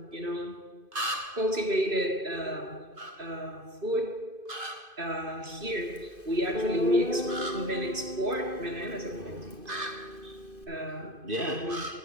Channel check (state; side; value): late; left; 2.5 ms